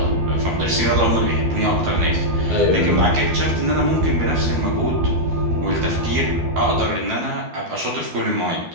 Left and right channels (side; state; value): left; late; 12 ms